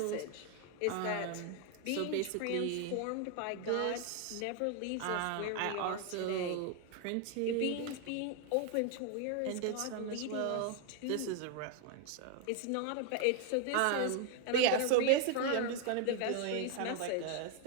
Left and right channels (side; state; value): both; different; correlation 0.01